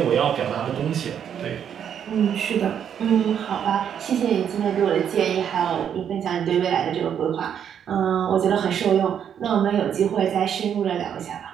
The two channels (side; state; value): left; quieter; 8.6 dB